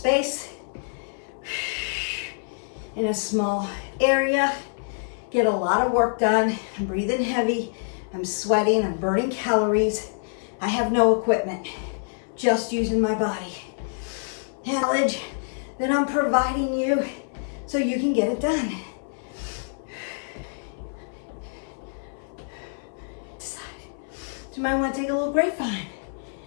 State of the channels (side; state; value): right; silent; 61 dB below the other